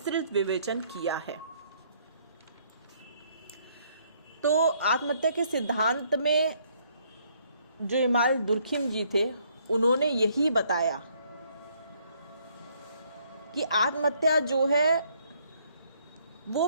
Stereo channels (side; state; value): both; inverted; correlation -0.67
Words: विवेचन किया है। तो आत्महत्या के सिद्धांत में जो इमाम दुर्खिम जी थे उन्होंने यही बताया कि आत्महत्या जो है वो